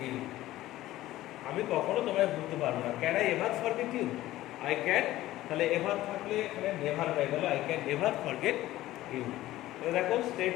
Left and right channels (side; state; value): right; quieter; 15.6 dB